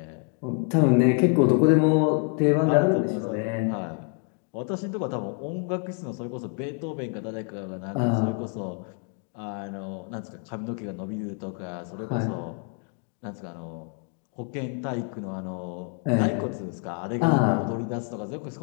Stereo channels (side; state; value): right; quieter; 33.6 dB